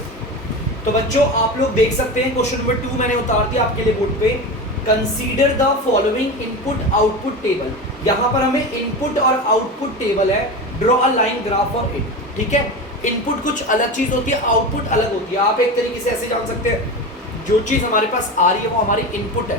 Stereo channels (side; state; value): both; normal; correlation 0.25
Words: तो बच्चों आप लोग देख सकते हैं क्वेश्चन नंबर 2 मैंने उतार दिया आपके लिए बोर्ड पे। Consider the following input output table. यहाँ पर हमें इनपुट और आउटपुट टेबल है, draw a line graph for it. ठीक है, इनपुट कुछ अलग चीज होती है, आउटपुट अलग होती है। आप एक तरीके से ऐसे जान सकते हैं, जो चीज हमारे पास आ रही है वो हमारी इनपुट